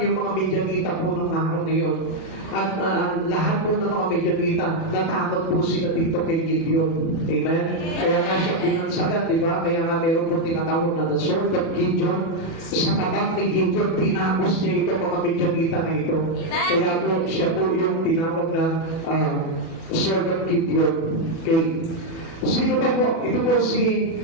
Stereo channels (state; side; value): late; right; 36 ms